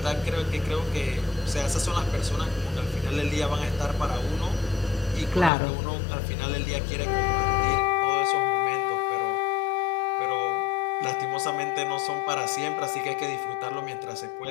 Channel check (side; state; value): right; drops out; at 5.5 s